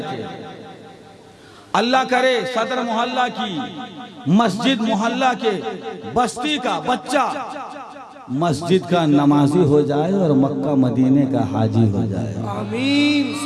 थे। अल्लाह करे सदर मोहल्ला की, मस्जिद मोहल्ला के बस्ती का बच्चा मस्जिद का नमाजी हो जाए और मक्का मदीने का हाजी हो जाए। आमीन।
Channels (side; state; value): both; identical; correlation 1.00